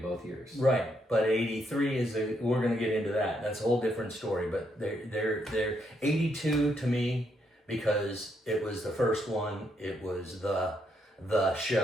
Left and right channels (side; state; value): both; normal; correlation 0.76